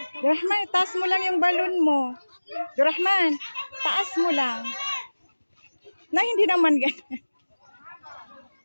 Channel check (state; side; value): inverted; both; correlation -1.00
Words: Rahman, taas mo lang yung balon mo. Rahman, taas mo lang. Na hindi naman ganyan.